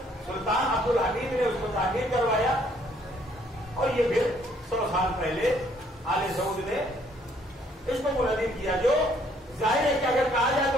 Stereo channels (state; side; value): normal; both; correlation 0.65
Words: سلطان عبد الحمید نے اس کو تعمیر کروایا، اور یہ پھر 100 سال پہلے آل سعود نے اس کو منہدم کیا، جو ظاہر ہے کہ اگر کہا جائے